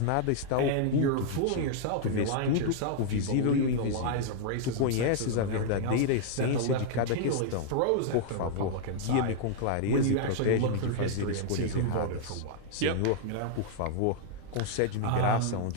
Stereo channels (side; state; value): both; different; correlation -0.01